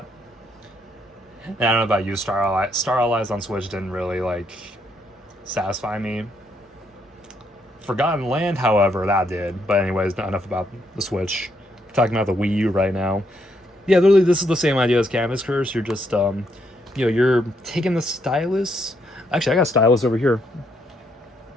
And I don't know about you, Star Allies on Switch didn't really like satisfy me. Forgotten Land, however, that did. But anyways, not enough about the Switch. Talking about the Wii U right now. Yeah, literally, this is the same idea as Canvas Curse. You're just, you know, you're taking the stylus. Actually, I got a stylus over here.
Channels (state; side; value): normal; both; correlation 0.74